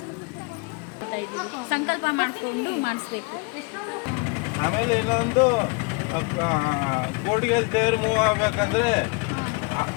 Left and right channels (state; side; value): quieter; right; 30.1 dB